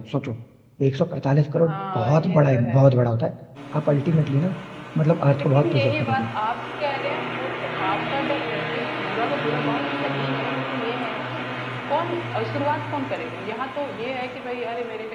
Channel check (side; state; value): both; identical; correlation 1.00